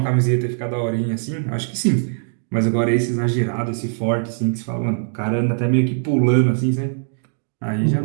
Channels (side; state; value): left; silent; digital silence